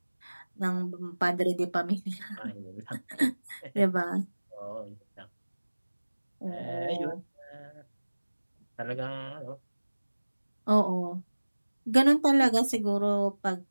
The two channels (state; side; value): inverted; both; correlation -1.00